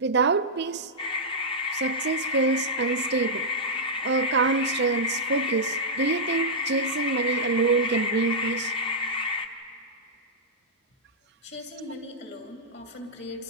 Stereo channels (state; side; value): normal; both; correlation -0.09